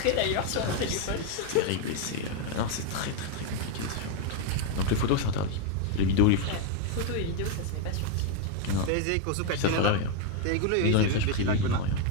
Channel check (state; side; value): different; both; correlation 0.01